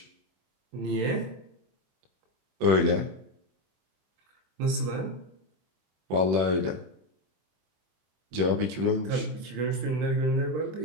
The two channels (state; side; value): late; left; 24 ms